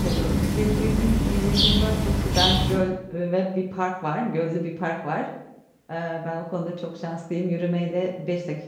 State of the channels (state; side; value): identical; both; correlation 1.00